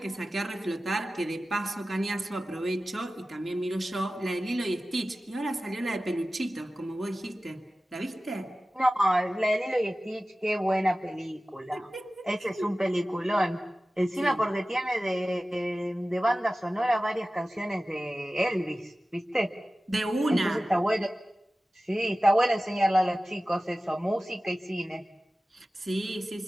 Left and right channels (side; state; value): both; normal; correlation 0.96